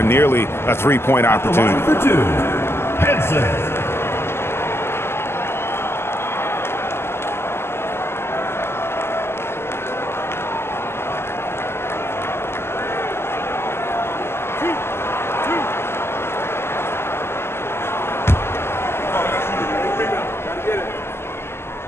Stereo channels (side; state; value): right; late; 0.12 ms